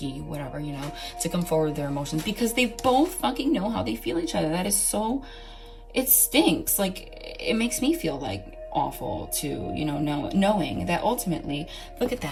whatever, you know, to come forward with their emotions, because they both fucking know how they feel each other. That is so, it stinks. Like, it makes me feel like awful to, you know, knowing that ultimately, look at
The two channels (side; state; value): both; identical; correlation 1.00